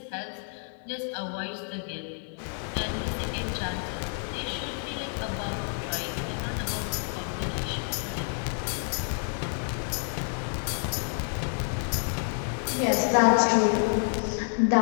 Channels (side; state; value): right; silent; 59 dB below the other